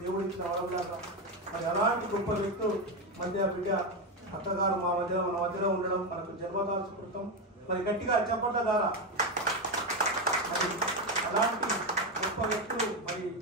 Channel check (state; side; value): normal; both; correlation 0.11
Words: దేవుడు ఇచ్చిన వరంలాగా. మరి అలాంటి గొప్ప వ్యక్తులు మధ్య బిడ్డ అక్కగారు మన మధ్యలో ఉండడం మనకు జన్మదాసుకృతం. మరి గట్టిగా చెప్పట్ల ద్వారా మరి అలాంటి గొప్ప వ్యక్తులు మరి